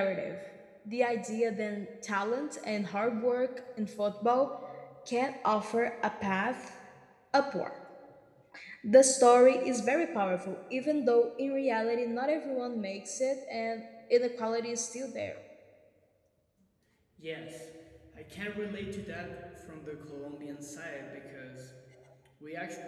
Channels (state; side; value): identical; both; correlation 1.00